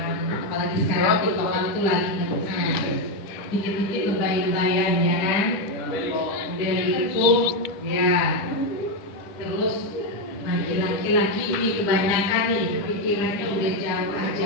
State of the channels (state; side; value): late; right; 10 ms